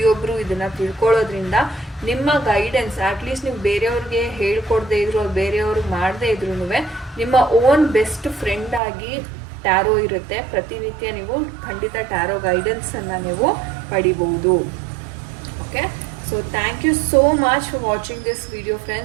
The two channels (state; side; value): drops out; left; at 8.8 s